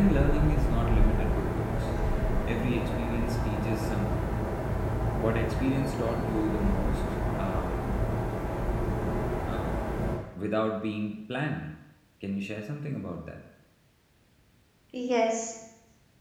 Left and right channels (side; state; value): both; identical; correlation 1.00